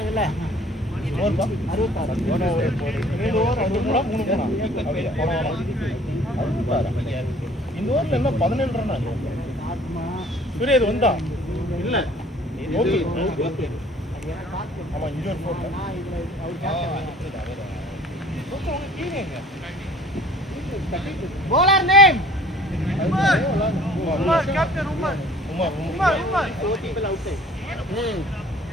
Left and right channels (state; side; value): normal; both; correlation 0.52